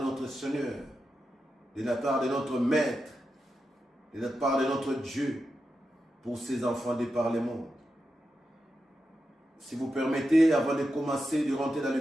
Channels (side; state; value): both; normal; correlation 0.89